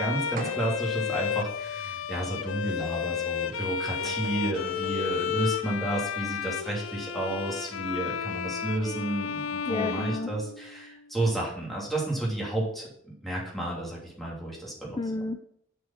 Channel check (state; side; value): normal; both; correlation 0.42